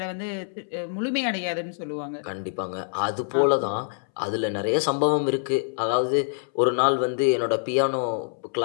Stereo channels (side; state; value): right; silent; 61 dB below the other